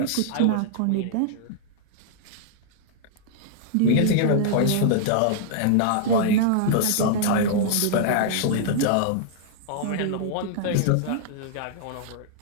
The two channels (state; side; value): different; both; correlation -0.01